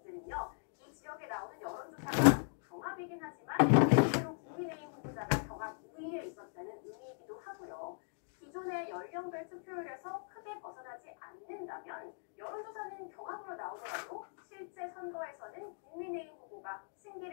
이 지역에 나오는 여론조사가 경합이긴 하지만 실제로 국민의힘 후보자가 경합 우위에 있었다는 의미이기도 하고요. 기존의 연령별 투표율에서 크게 벗어나지 않는다면 여론조사는 경합으로 나오더라도 실제 선거에서는 국민의힘 후보가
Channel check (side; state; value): right; silent; digital silence